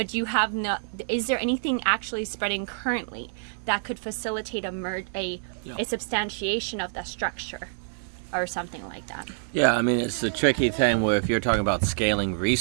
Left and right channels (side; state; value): left; silent; digital silence